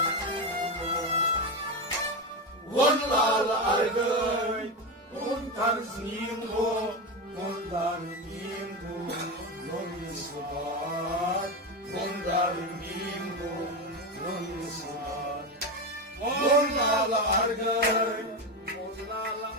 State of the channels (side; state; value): both; normal; correlation 0.15